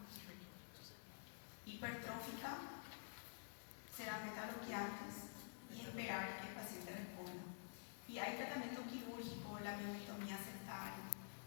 hipertrófica, será metalobloqueantes y esperar que el paciente responda. Y hay tratamiento quirúrgico, la miometomía septal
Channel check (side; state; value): right; silent; digital silence